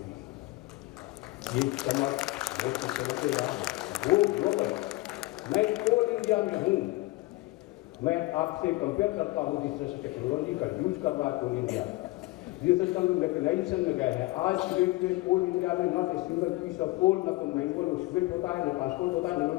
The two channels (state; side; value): quieter; right; 20.7 dB